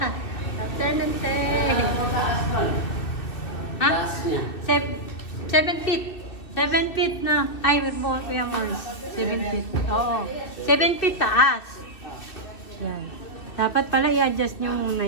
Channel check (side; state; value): right; late; 2.6 ms